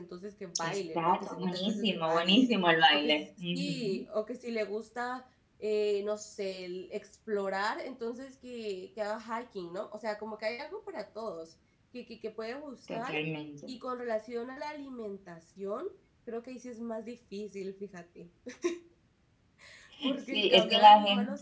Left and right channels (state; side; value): identical; both; correlation 1.00